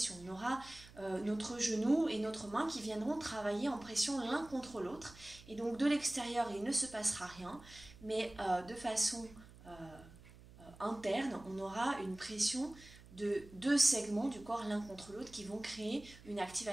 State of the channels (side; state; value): right; noise; hum, 20 dB below the sound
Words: On aura notre genou et notre main qui viendront travailler en pression l'un contre l'autre et donc de l'extérieur, il ne se passera rien, mais de façon interne, on aura une pression de deux segments du corps l'un contre l'autre qui vont créer une